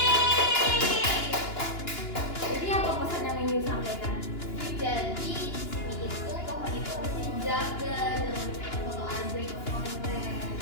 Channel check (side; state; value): right; late; 2.9 ms